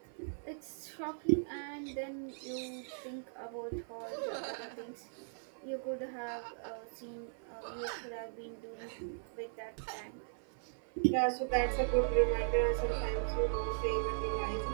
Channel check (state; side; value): silent; left; 52 dB below the other